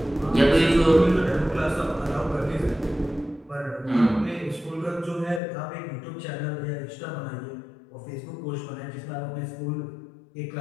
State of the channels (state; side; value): drops out; right; at 5.4 s